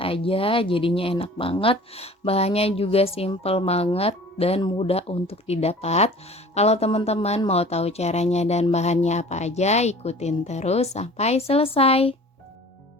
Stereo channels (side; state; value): both; normal; correlation 0.45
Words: aja, jadinya enak banget. Bahannya juga simple banget dan mudah untuk didapat. Kalau teman-teman mau tahu caranya dan bahannya apa aja, ikutin terus sampai selesai.